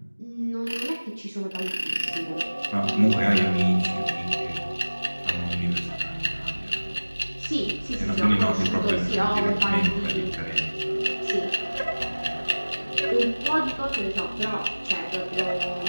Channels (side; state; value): both; inverted; correlation -1.00